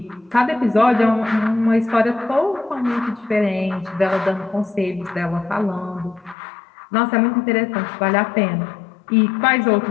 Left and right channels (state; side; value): drops out; right; at 6.4 s